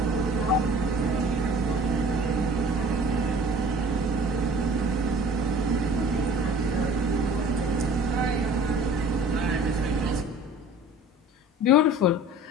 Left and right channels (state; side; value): normal; both; correlation 0.46